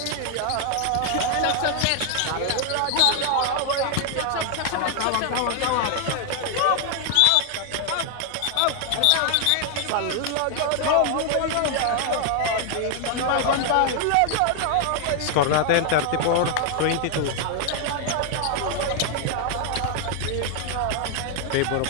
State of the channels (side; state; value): both; different; correlation 0.00